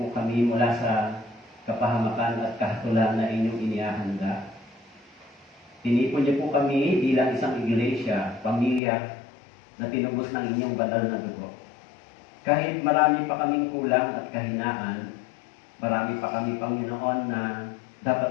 kami mula sa kapahamakan at kahatulan na inyong inihahanda. Tinipon niyo po kami bilang isang iglesia, pamilya na tinubos ng inyong banal na dugo. Kahit marami pa kaming kulang at kahinaan, marami pa kami, Panginoon, na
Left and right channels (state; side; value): drops out; right; at 8.8 s